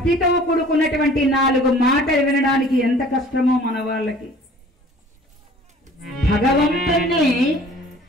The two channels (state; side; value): normal; both; correlation 0.49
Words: కూడుకున్నటువంటి 4 మాటలు వినడానికి ఎంత కష్టమో మన వాళ్ళకి. భగవంతుణ్ణి